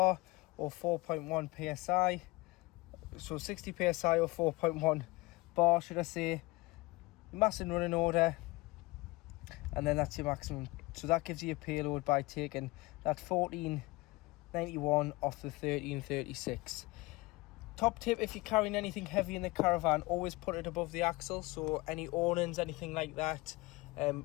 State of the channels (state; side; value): quieter; right; 22.4 dB